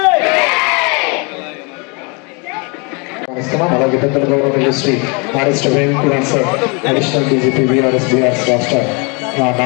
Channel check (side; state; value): right; quieter; 31.7 dB